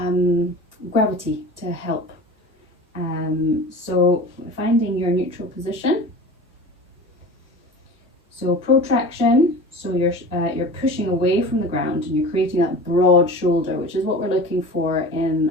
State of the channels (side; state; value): both; normal; correlation 0.36